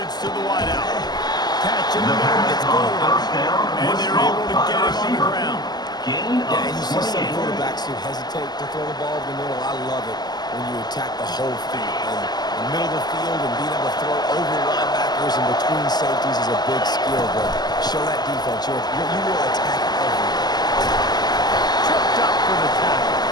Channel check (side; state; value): right; late; 0.20 ms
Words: to the wideout. Catch in the middle, gets going. And they're able to get him on the ground. Yeah, and you see some quarterbacks who hesitate to throw the ball in the middle. I love it when you attack the whole field. And the middle of the field and being able to throw over linebackers and between safeties is a big skill. But show that defense. You will attack everything. Tripped up for the tackle.